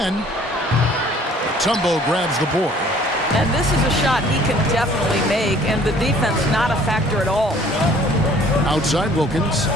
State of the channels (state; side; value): normal; both; correlation 0.55